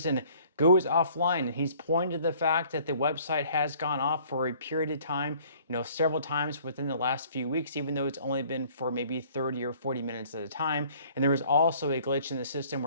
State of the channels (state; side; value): inverted; both; correlation -0.56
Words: goes offline. And he's pointed to the fact that the website has gone off for a period of time, several times within the last few weeks, even though it's only been for maybe 30 or 40 minutes at a time. And there was also a glitch in the system